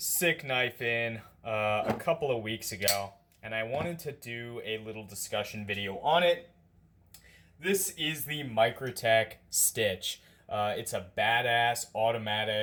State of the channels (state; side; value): identical; both; correlation 1.00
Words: knife in a couple of weeks ago, and I wanted to do a little discussion video on it. This is the Microtech Stitch. It's a badass